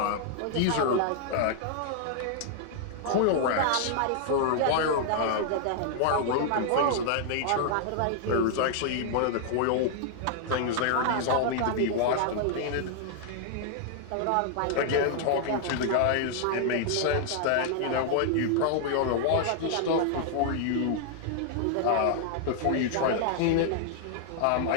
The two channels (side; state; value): both; different; correlation -0.01